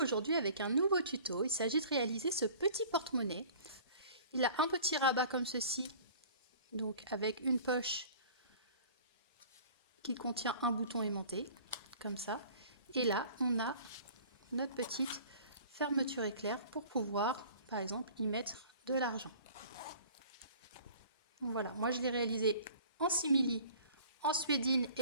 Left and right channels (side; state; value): both; inverted; correlation -0.47